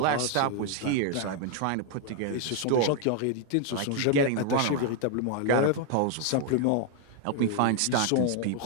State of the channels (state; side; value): different; both; correlation 0.00